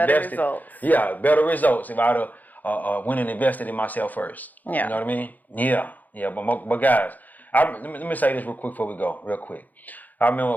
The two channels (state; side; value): late; right; 0.082 ms